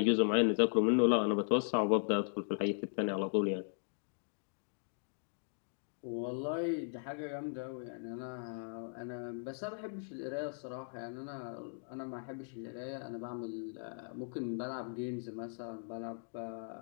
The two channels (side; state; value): right; silent; digital silence